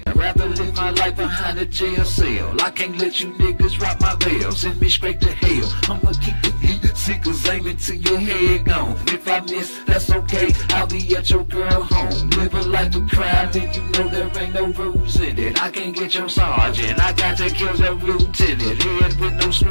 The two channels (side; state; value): both; inverted; correlation -1.00